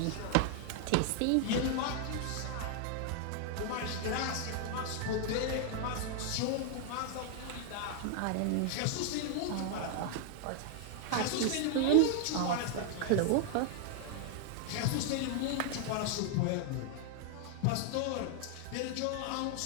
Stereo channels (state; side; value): different; both; correlation 0.00